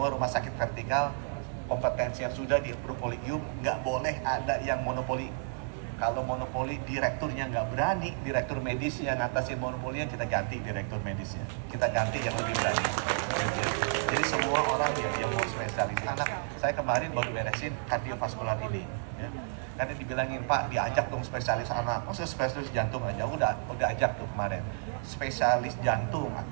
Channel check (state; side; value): silent; left; digital silence